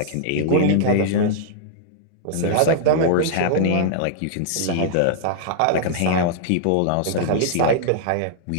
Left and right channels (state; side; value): different; both; correlation -0.01